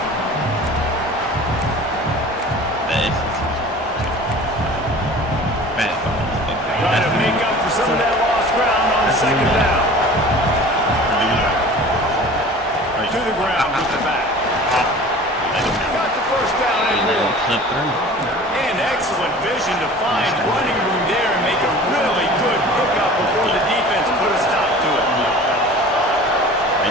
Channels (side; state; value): both; normal; correlation 0.42